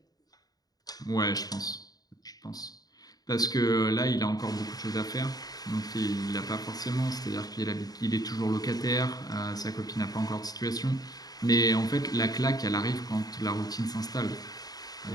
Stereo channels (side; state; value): right; late; 0.18 ms